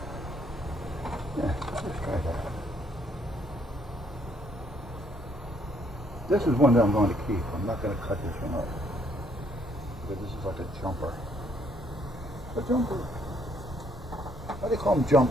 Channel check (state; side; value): normal; both; correlation 0.68